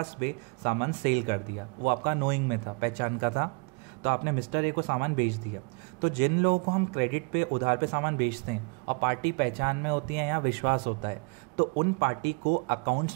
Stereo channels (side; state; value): left; quieter; 32.4 dB